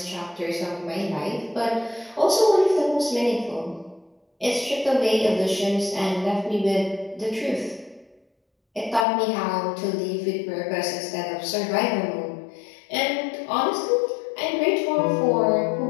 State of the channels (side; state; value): right; drops out; at 9.1 s